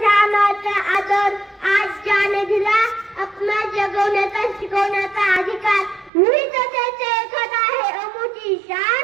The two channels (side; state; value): left; drops out; at 6.1 s